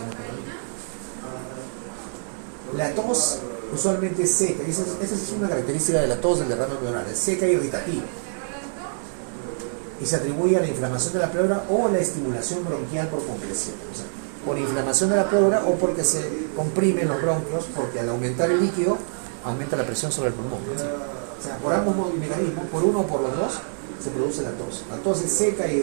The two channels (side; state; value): left; silent; digital silence